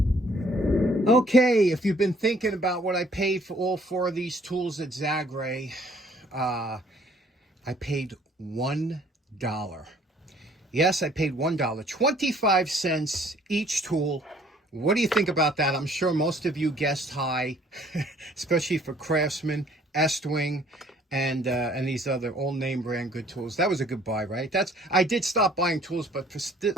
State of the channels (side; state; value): both; normal; correlation 0.59